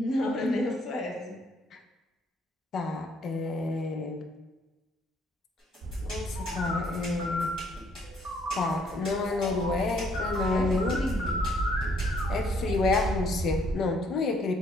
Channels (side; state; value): both; normal; correlation 0.66